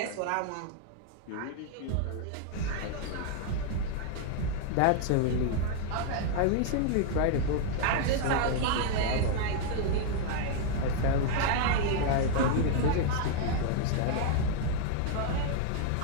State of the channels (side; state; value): both; different; correlation 0.00